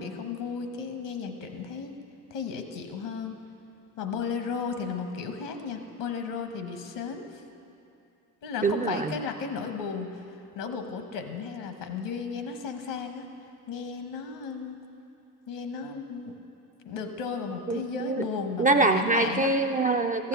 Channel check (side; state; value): both; normal; correlation 0.16